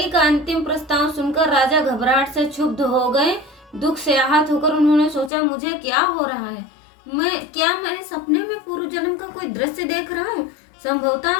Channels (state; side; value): drops out; right; at 5.3 s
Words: का अंतिम प्रस्ताव सुनकर राजा घबराहट से क्षुब्ध हो गए। दुख से आहत होकर उन्होंने सोचा, मुझे क्या हो रहा है? मैं सपने में पूर्व जन्म का कोई दृश्य देख रहा हूँ?